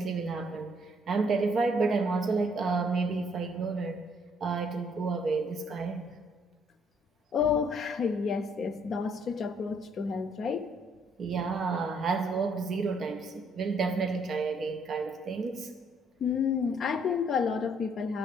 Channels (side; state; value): both; normal; correlation 0.66